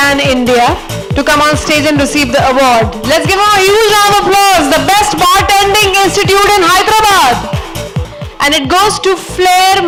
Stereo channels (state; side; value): identical; both; correlation 1.00